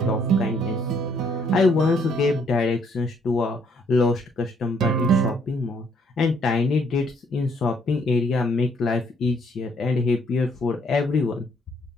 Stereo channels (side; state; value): both; normal; correlation 0.67